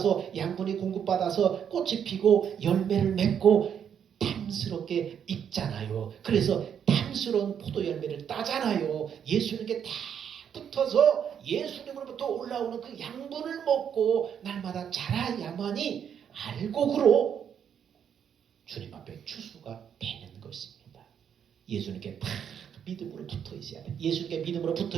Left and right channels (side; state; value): left; quieter; 8.3 dB